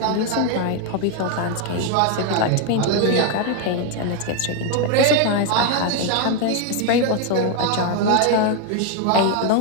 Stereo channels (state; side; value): different; both; correlation 0.01